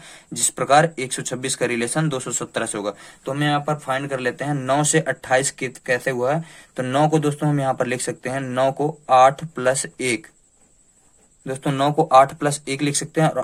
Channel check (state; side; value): identical; both; correlation 1.00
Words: जिस प्रकार 126 का रिलेशन 217 से होगा। तो हम यहाँ पर फाइंड कर लेते हैं 9 से 28 कैसे हुआ है। तो 9 को दोस्तों हम यहाँ पर लिख सकते हैं, 9 को 8 प्लस 1, दोस्तों 9 को 8 प्लस 1 लिख सकते हैं।